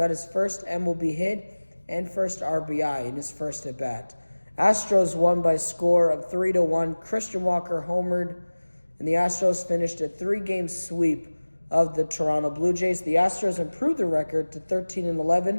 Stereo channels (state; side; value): inverted; both; correlation -1.00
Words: his first MLB hit and first RBI in his first at-bat. Astros won by a score of 3-1. Christian Walker homered, and the Astros finished a 3-game sweep of the Toronto Blue Jays. The Astros improved their record to